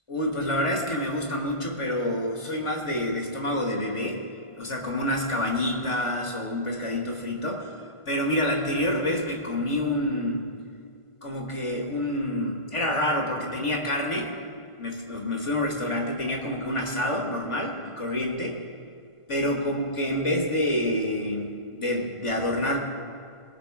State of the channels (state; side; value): late; right; 1.5 ms